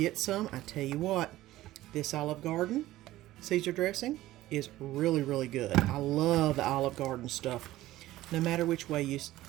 some. I tell you what, this Olive Garden Caesar dressing is really, really good. I love the Olive Garden stuff, no matter which way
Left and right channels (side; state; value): left; quieter; 15.8 dB